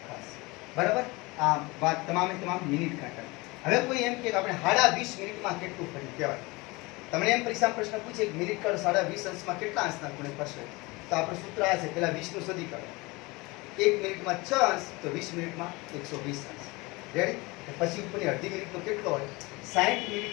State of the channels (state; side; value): quieter; right; 23.9 dB